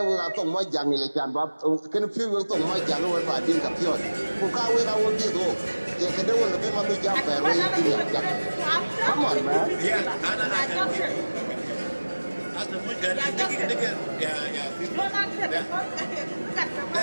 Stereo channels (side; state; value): both; inverted; correlation -1.00